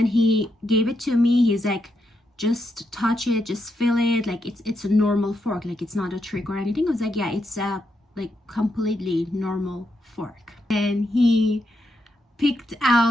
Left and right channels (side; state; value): both; normal; correlation 0.82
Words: he gave it to me. He's like, just touch it, just feel it. Like, it's a normal fork. Like, it's not a trick or anything. I was like, yeah, it's a like completely normal fork. And he picked